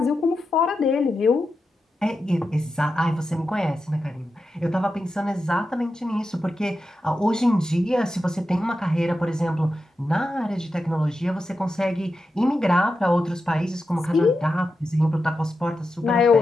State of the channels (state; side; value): normal; both; correlation 0.89